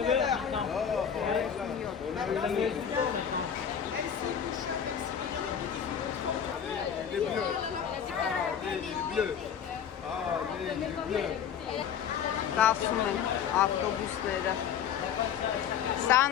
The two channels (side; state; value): right; quieter; 8.3 dB